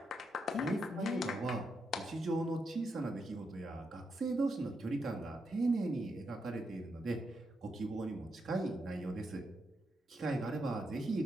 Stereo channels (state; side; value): normal; both; correlation 0.82